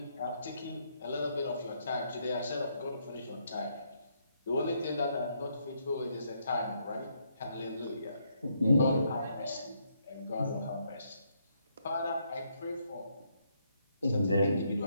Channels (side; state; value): both; inverted; correlation -0.75